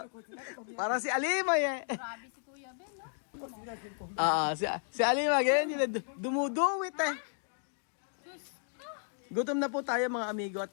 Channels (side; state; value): right; silent; digital silence